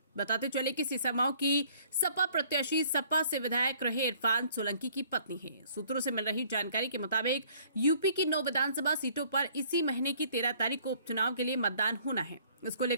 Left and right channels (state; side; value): inverted; both; correlation -0.58